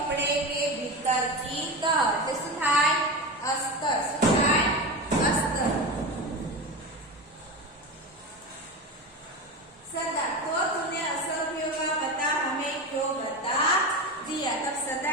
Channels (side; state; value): both; normal; correlation 0.24